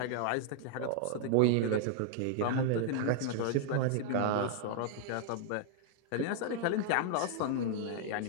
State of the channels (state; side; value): different; both; correlation -0.01